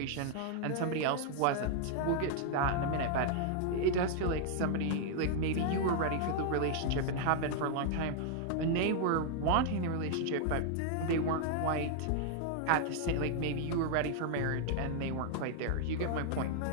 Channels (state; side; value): different; both; correlation 0.00